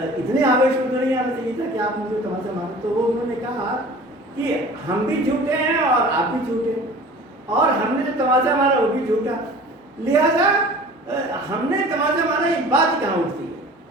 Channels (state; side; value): normal; both; correlation 0.43